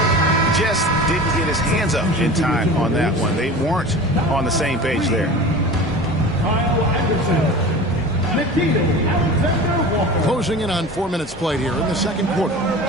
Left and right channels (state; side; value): normal; both; correlation 0.36